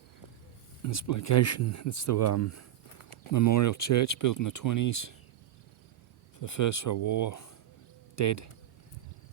in this location. It's the memorial church built in the 20s for the First World War. Dead.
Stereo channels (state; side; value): quieter; left; 12.0 dB